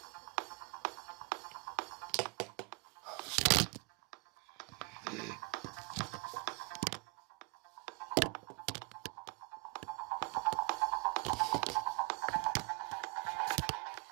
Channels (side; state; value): left; quieter; 30.8 dB